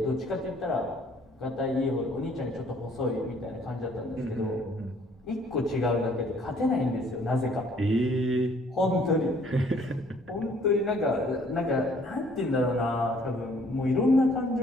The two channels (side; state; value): both; normal; correlation 0.60